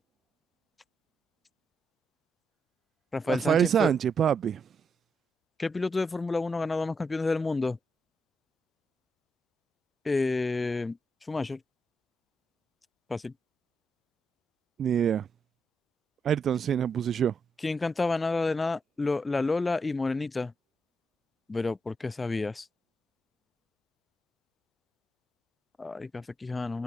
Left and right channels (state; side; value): normal; both; correlation 0.82